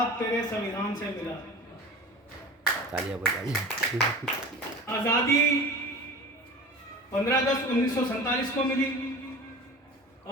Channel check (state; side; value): normal; both; correlation 0.36